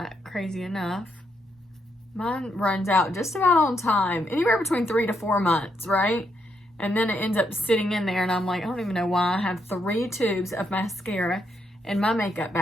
crazy enough. Mine runs out just about on time, anywhere between 3 to 4 months, right? And then it ends up sitting in there, and I'm like, I don't even know why I have 3 tubes of mascara in my makeup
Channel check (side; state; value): both; normal; correlation 0.78